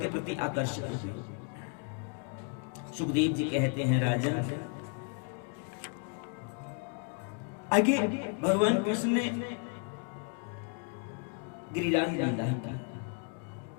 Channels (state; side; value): quieter; right; 38.3 dB